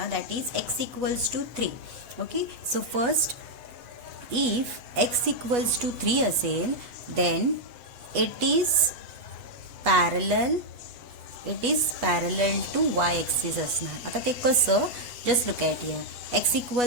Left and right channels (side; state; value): left; late; 8.2 ms